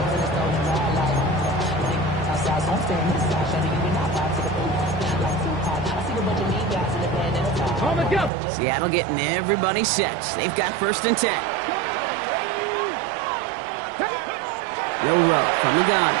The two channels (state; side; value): drops out; left; at 8.3 s